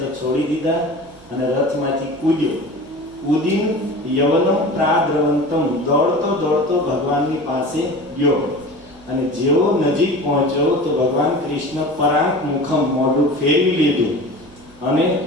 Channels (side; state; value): right; noise; hum, 26 dB below the sound